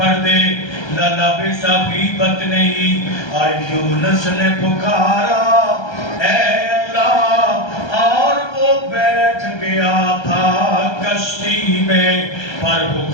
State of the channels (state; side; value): late; right; 1.3 ms